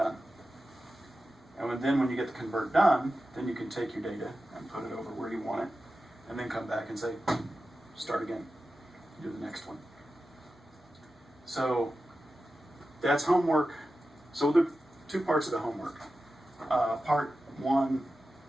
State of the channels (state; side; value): normal; both; correlation 0.93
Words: And then when you get the convert done, then you can take your data and put it over where you want it, and then come back and say, start again. Do the next one. So that's homework. So there are two parts of the homework. Part one,